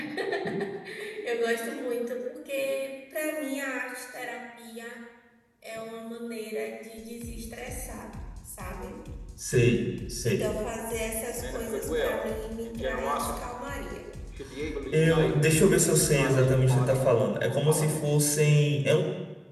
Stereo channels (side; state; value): both; identical; correlation 1.00